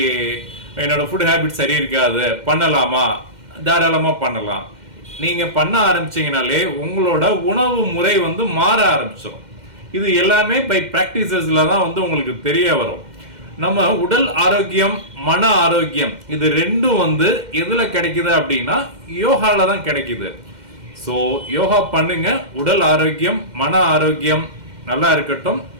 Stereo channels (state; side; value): late; left; 2.1 ms